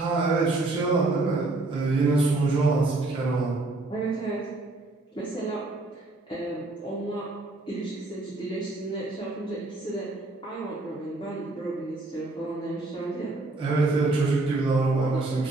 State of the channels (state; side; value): quieter; left; 3.1 dB